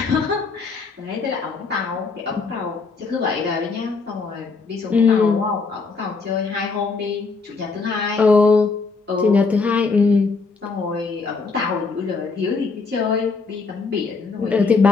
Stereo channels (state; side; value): quieter; right; 4.4 dB